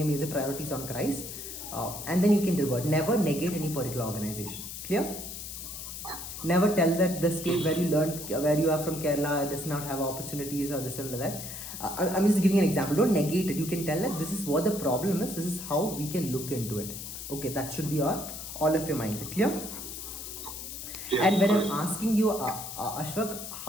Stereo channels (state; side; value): noise; left; hiss, 9 dB below the sound